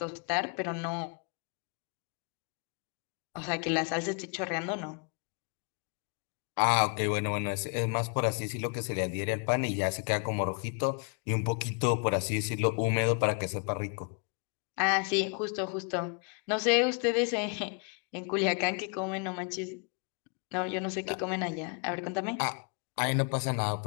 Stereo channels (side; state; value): right; quieter; 37.7 dB